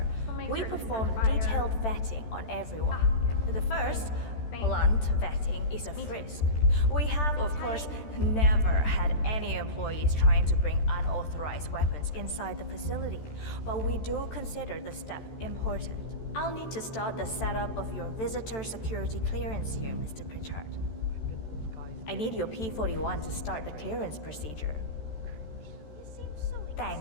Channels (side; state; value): right; late; 13 ms